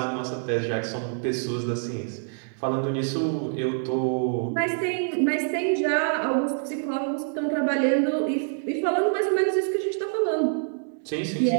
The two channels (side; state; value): left; silent; digital silence